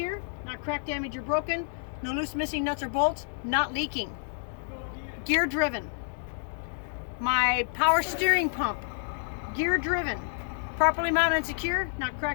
not cracked, damaged, or broken. No loose, missing nuts or bolts, not leaking. Gear driven. My power steering pump, gear driven, properly mounted and secure, not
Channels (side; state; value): right; silent; digital silence